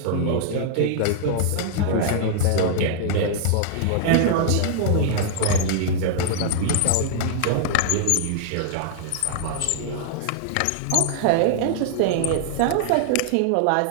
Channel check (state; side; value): different; both; correlation -0.01